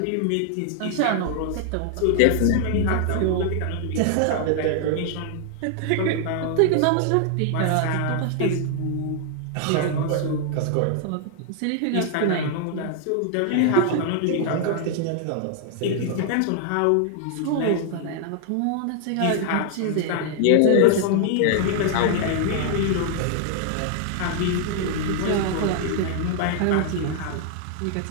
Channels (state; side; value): different; both; correlation 0.00